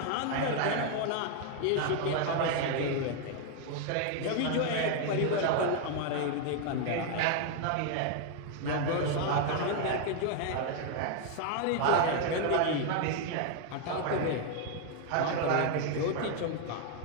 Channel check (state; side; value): different; both; correlation 0.00